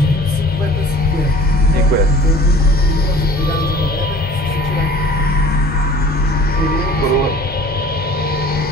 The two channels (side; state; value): both; normal; correlation 0.47